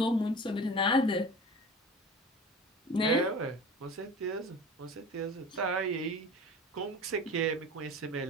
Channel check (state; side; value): normal; both; correlation 0.37